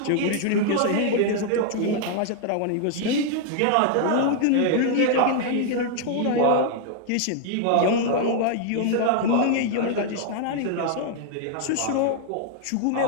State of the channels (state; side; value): different; both; correlation 0.00